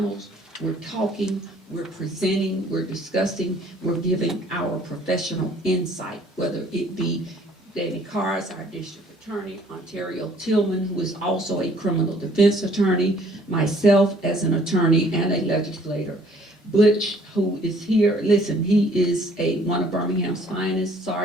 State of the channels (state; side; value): normal; both; correlation 0.59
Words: we're talking, we're presenting, we're discussing, we're giving our professional insight, whether it be Danny Carr, our district attorney, Ontario Tillman, who is also a criminal defense attorney, myself as an attorney and a legislator. Butch, who is here, listen, he is one of Birmingham's finest